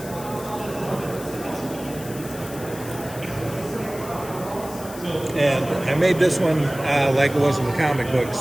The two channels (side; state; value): left; noise; hiss, 15 dB below the sound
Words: And I made this one like it was in the comic